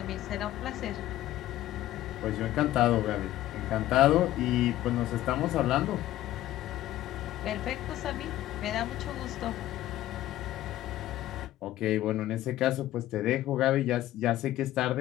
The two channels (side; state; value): right; quieter; 14.3 dB